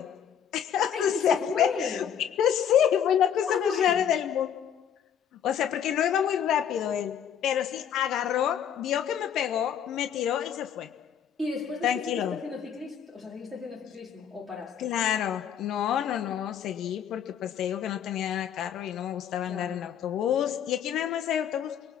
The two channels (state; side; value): quieter; right; 8.8 dB